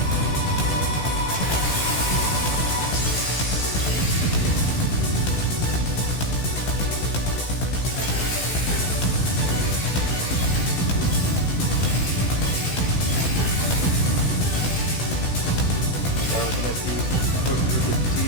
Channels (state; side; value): late; right; 16 ms